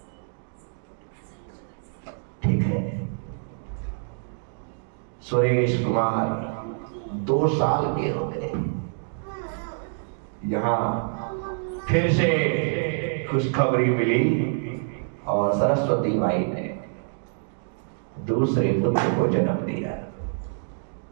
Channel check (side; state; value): left; silent; digital silence